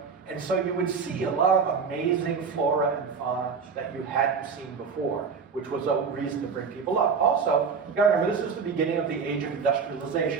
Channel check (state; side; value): quieter; left; 5.6 dB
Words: And so you would see a lot of amazing flora and fauna that you hadn't seen before, which was a reason to bring people up. Also, you gotta remember, this is the beginning of the age of